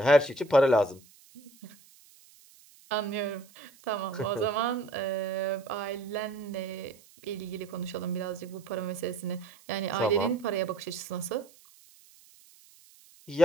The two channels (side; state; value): right; noise; hiss, 26 dB below the sound